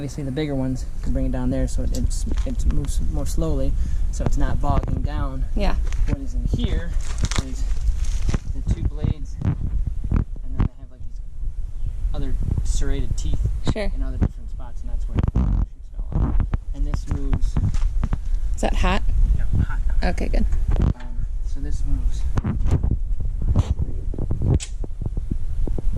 the bigger ones can bring it down there so it moves more slowly, so it's not bogging down. Yeah. What is in here is the two blades, and then they have like these other serrated teeth Sure. in other different spots, and that's where it shoots it all up. And this moves. Is that hot? No, hot now. Okay, good. So this moves.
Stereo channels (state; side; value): identical; both; correlation 1.00